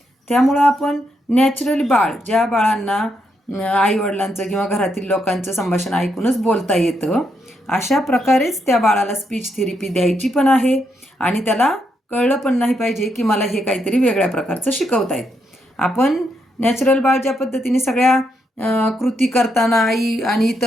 त्यामुळं आपण नॅचरली ज्या बाळांना आईवडिलांचं किंवा घरातील लोकांचं संभाषण ऐकूनच बोलता येतं अशा प्रकारेच त्या बाळाला स्पीच थेरपी द्यायची पण आहे आणि त्याला कळलं पण नाही पाहिजे की मला हे काहीतरी वेगळ्या प्रकारचं शिकवतायत. आपण नॅचरल बाळ ज्या पद्धतीने सगळ्या कृती करताना आई आणि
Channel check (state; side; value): normal; both; correlation 0.79